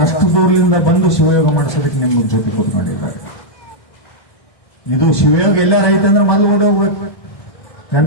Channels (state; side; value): late; right; 1.2 ms